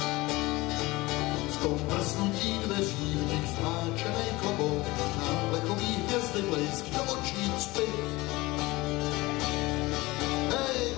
V tom prznutí dveří v nich zmáčenej klobouk, na plechový hvězdy blejsk do očí cpit. Hej,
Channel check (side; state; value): right; quieter; 21.1 dB